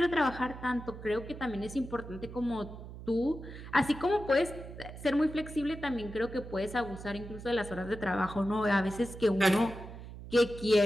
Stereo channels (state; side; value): noise; right; hum, 13 dB below the sound